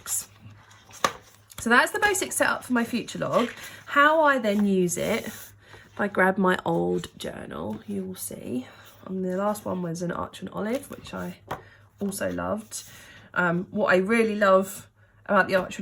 So that's the basic setup for my future log. How I then use it, if I grab my old journal, you will see And the last one was an Arch and Olive, which I also loved. What I really love about the Arch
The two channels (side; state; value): both; identical; correlation 1.00